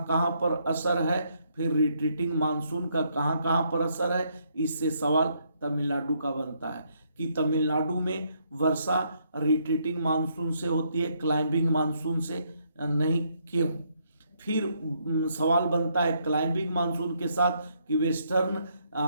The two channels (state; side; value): inverted; both; correlation -0.73